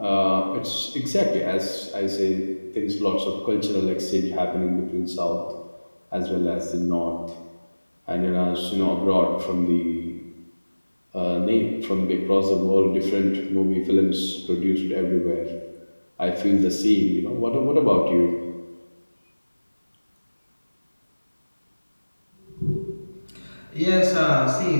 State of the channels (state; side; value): inverted; both; correlation -1.00